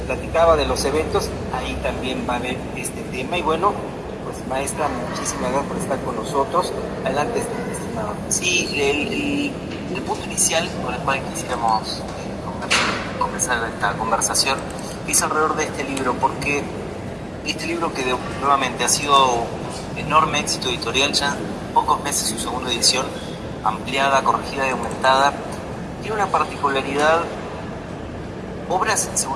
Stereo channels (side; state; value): both; identical; correlation 1.00